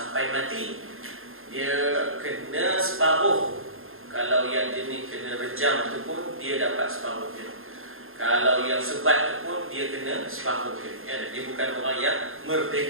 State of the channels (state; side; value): late; left; 0.60 ms